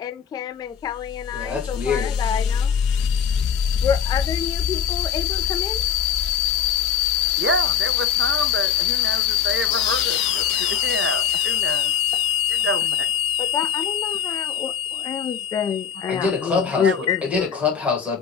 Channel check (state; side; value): quieter; right; 7.6 dB